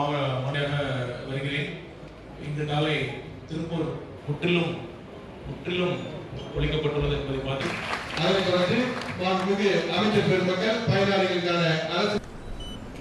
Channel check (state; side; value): identical; both; correlation 1.00